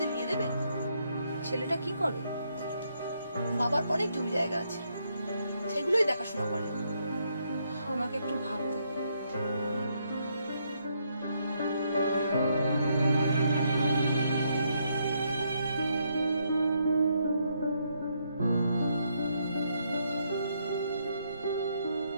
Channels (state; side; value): inverted; both; correlation -0.75